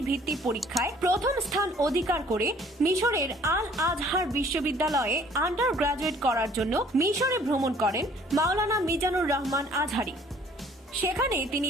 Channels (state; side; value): normal; both; correlation 0.56